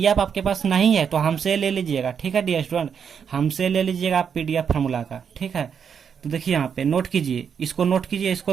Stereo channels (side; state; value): left; quieter; 7.2 dB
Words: आपके पास नहीं है तो हमसे ले लीजिएगा, ठीक है डियर स्टूडेंट, हमसे ले लीजिएगा आप पीडीएफ फार्मूला का, ठीक है। तो देखिए यहाँ पे नोट कीजिए, इसको नोट कीजिए,